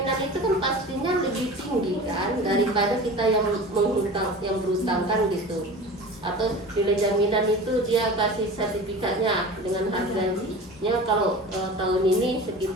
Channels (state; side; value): normal; both; correlation 0.35